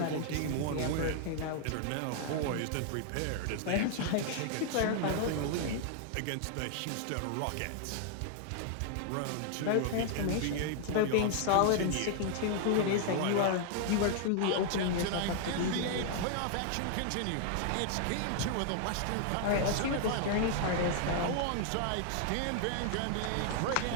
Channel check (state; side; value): different; both; correlation 0.00